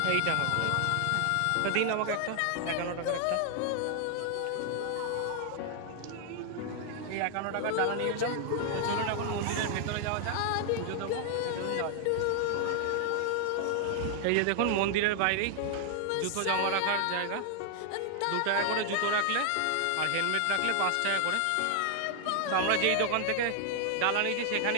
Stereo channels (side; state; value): both; different; correlation 0.00